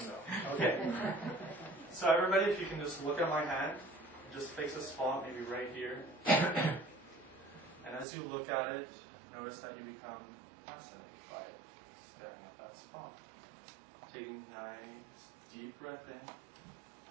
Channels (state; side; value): drops out; left; at 8.1 s